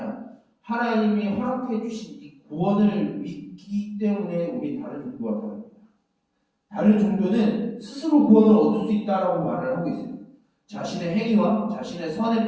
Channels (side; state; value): both; identical; correlation 1.00